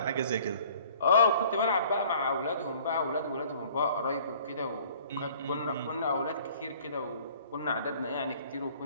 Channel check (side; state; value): both; inverted; correlation -0.53